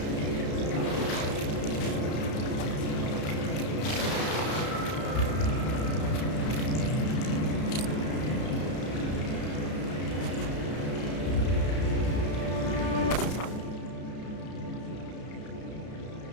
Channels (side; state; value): right; late; 33 ms